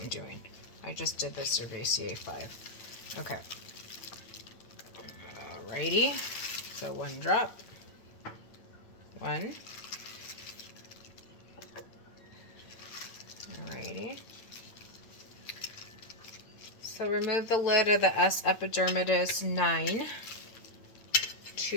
doing. I just did the Cerevisiae 5. Okay. Alrighty. So 1 drop. 1. Alrighty. So remove the lid of the S. epidermidis 9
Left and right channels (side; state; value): right; late; 8.8 ms